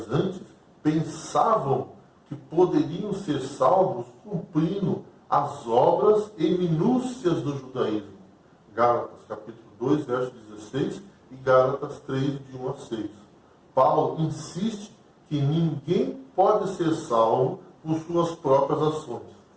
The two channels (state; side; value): identical; both; correlation 1.00